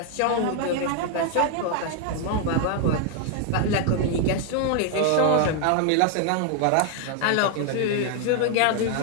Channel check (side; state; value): both; different; correlation 0.00